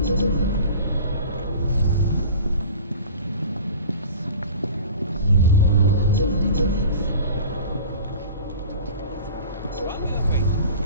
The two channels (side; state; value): both; inverted; correlation -0.39